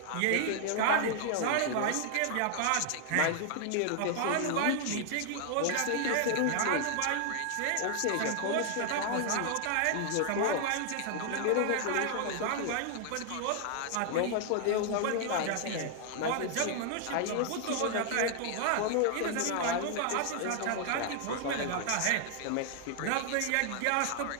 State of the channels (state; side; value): different; both; correlation 0.00